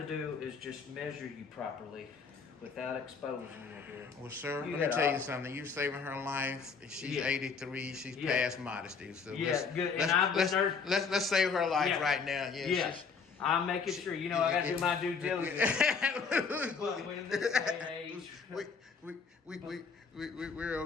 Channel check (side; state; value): right; quieter; 5.4 dB